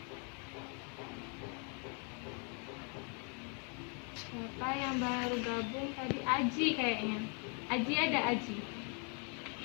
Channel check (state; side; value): quieter; right; 38.4 dB